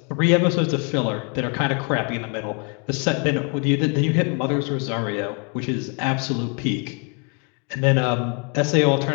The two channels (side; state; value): right; quieter; 35.0 dB